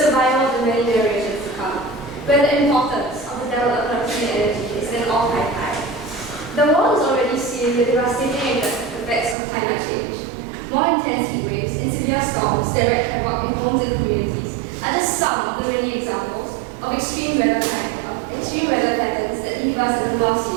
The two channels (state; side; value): drops out; left; at 9.3 s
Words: survival of the many generations to come, where the importance of the development of clean energy is at an all-time high. The world is already seeing the devastating effects of climate change. More intense heat waves and severe storms that wreak havoc in homes and communities are just some of the many examples of extreme weather patterns that leave us at the mercy